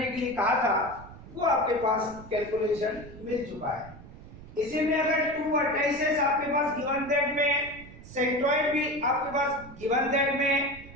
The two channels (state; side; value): noise; right; rumble, 17 dB below the sound